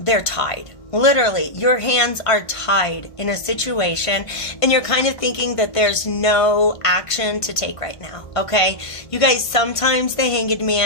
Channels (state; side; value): late; right; 1.5 ms